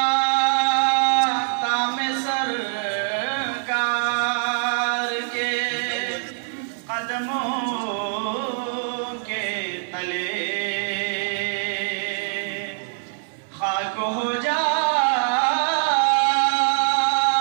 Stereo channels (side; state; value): left; silent; digital silence